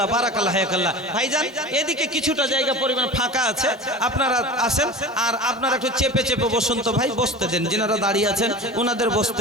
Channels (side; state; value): both; normal; correlation 0.33